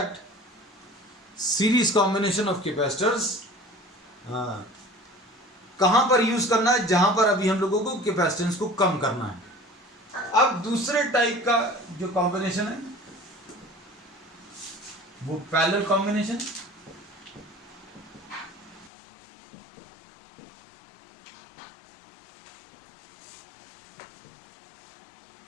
series combination of capacitors कहां पर यूज करना है, जहां पर अभी हम लोगों को कैपेसिटेंस को कम करना है। अब दूसरे टाइप का जो कॉम्बिनेशन है वो पैरेलल कॉम्बिनेशन।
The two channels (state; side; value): drops out; right; at 18.9 s